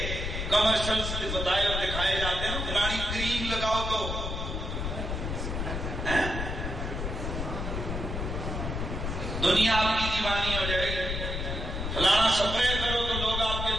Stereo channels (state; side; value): noise; left; rumble, 3 dB below the sound